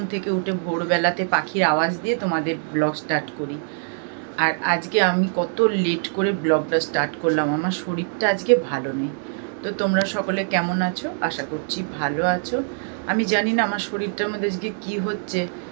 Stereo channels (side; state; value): left; silent; 59 dB below the other